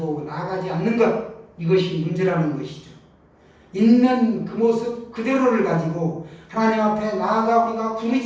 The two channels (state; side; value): identical; both; correlation 1.00